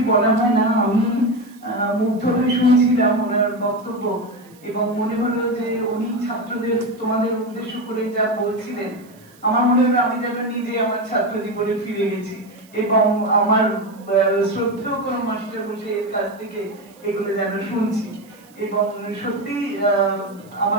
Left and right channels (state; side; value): noise; right; hiss, 28 dB below the sound